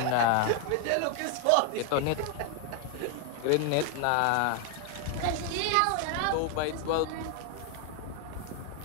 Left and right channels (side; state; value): both; different; correlation 0.00